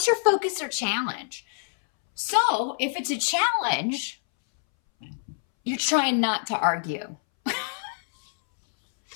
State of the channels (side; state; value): right; silent; 61 dB below the other